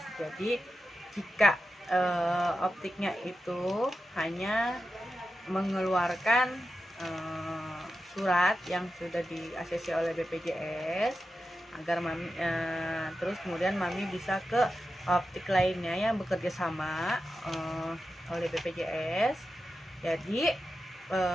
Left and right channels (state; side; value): normal; both; correlation 0.91